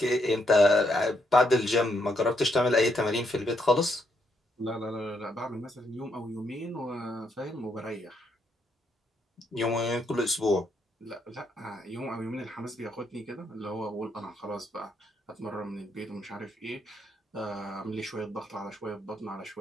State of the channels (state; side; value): normal; both; correlation 0.76